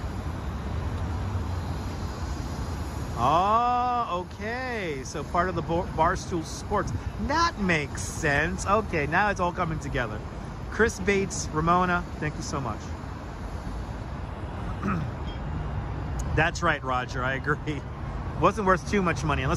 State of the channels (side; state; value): both; identical; correlation 1.00